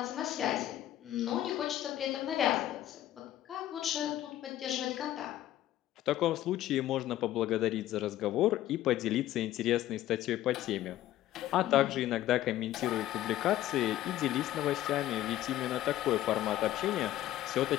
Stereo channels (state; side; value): quieter; right; 13.6 dB